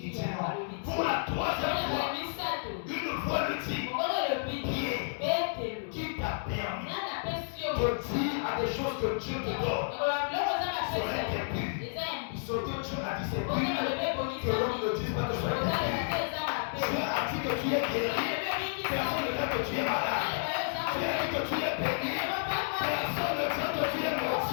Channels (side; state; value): right; silent; digital silence